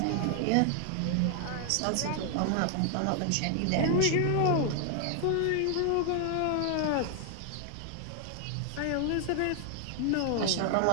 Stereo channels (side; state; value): both; different; correlation 0.00